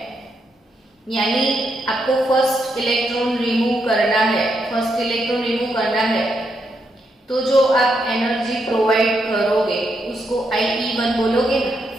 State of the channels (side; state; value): both; normal; correlation 0.80